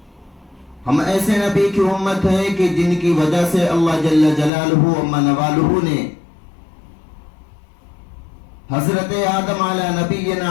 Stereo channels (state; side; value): drops out; right; at 4.5 s